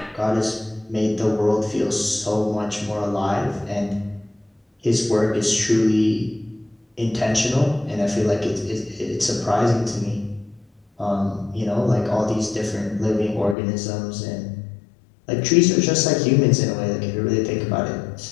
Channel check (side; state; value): right; drops out; at 13.6 s